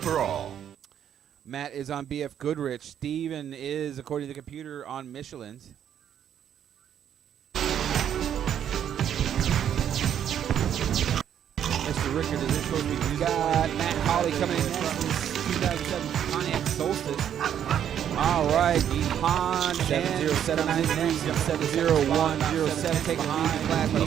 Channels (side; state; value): left; quieter; 9.5 dB